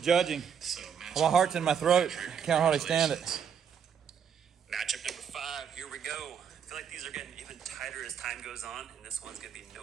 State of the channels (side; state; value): left; quieter; 7.6 dB